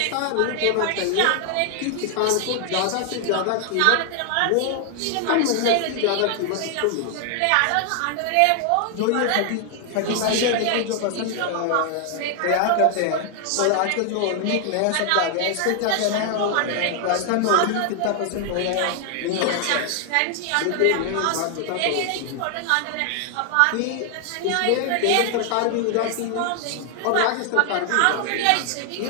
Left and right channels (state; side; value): different; both; correlation 0.00